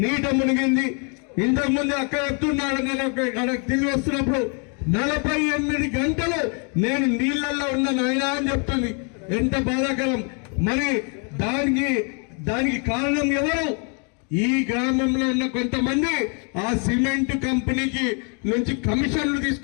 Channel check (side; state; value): right; quieter; 37.6 dB